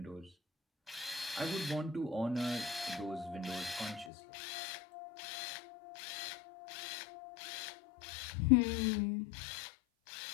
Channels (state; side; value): drops out; right; at 4.1 s